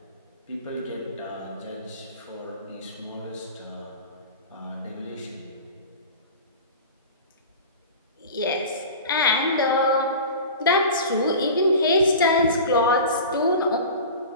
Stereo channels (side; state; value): both; inverted; correlation -0.35